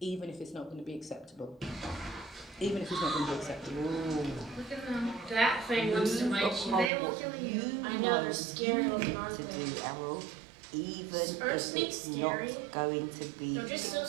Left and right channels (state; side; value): drops out; left; at 6.9 s